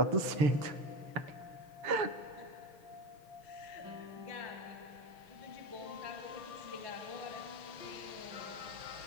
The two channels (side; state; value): left; late; 6.9 ms